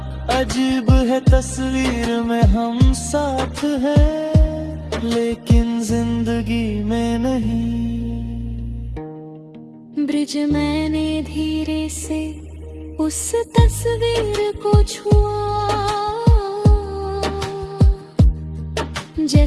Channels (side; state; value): both; identical; correlation 1.00